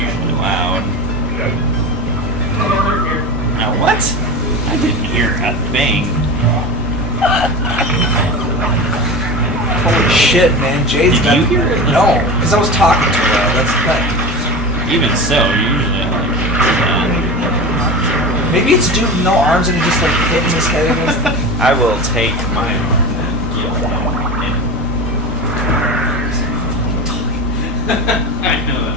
loud. Here. Now what? I didn't hear a thing. Holy shit, man. Jade's Did got... you hear it? No, because I was talking to her. That's Even so, usually I like maybe it's a dude with no arms and he just like hitting his head against the... I will take my arm and give him I know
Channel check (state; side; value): normal; both; correlation 0.28